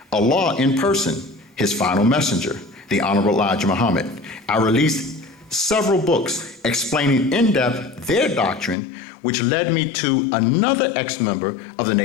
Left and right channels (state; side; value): drops out; right; at 8.8 s